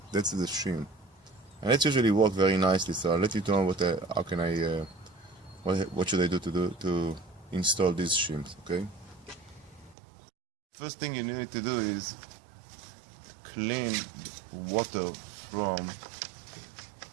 That's the shim, and it usually works very nicely. So I'll let you know how can I what should I do to install these shims. Okay. First thing you need to do is clean water from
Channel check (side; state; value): left; drops out; at 10.0 s